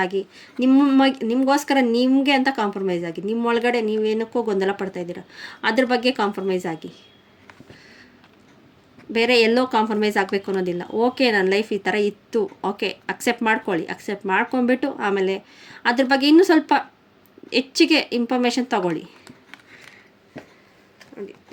ಆಗಿ, ನಿಮಗೋಸ್ಕರ ನಿಮಗೆ ಅಂತ ಕಾಂಪ್ರಮೈಸ್ ಆಗಿ. ನಿಮ್ಮೊಳಗಡೆ ನೀವೇನಕ್ಕೂ ಗೊಂದಲ ಪಡ್ತಾಯಿದ್ದೀರ, ಅದ್ರ ಬಗ್ಗೆ ಕಾಂಪ್ರಮೈಸ್ ಆಗಿ. ಬೇರೆ ಎಲ್ಲೋ ಕಾಂಪ್ರಮೈಸ್ ಆಗಬೇಕು ಅನ್ನೋದಿಲ್ಲ. ಓಕೆ, ನನ್ನ ಲೈಫ್ ಈ ಥರ ಇತ್ತು, ಓಕೆ ಅಕ್ಸೆಪ್ಟ್ ಮಾಡ್ಕೊಳ್ಳಿ. ಅಕ್ಸೆಪ್ಟ್ ಮಾಡ್ಕೊಂಬಿಟ್ಟು ಆಮೇಲೆ ಅದ್ರ ಬಗ್ಗೆ ಇನ್ನೂ ಸ್ವಲ್ಪ ಹೆಚ್ಚಿಗೆ ಇನ್ಫಾರ್ಮೇಷನ್ ತಗೊಳ್ಳಿ. ನೋಡಿ,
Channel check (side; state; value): both; identical; correlation 1.00